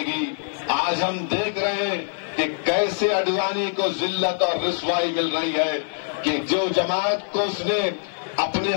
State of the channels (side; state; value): right; silent; 56 dB below the other